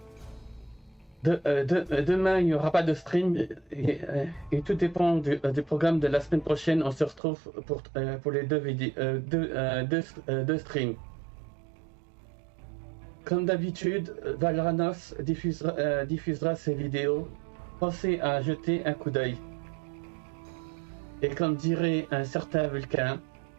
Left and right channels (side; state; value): left; drops out; at 7.2 s